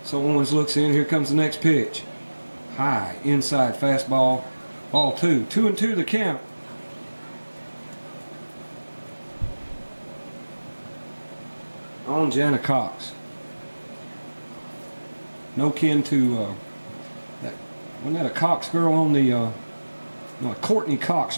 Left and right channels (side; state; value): both; inverted; correlation -1.00